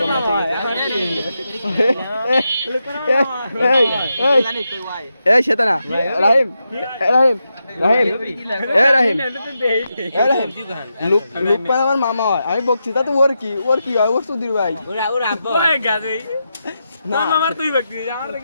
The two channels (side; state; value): both; inverted; correlation -0.87